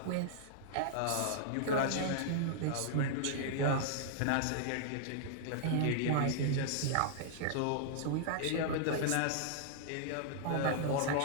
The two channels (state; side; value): different; both; correlation -0.01